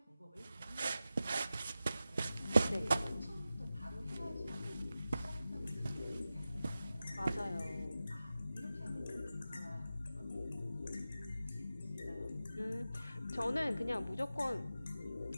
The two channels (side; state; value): both; inverted; correlation -0.93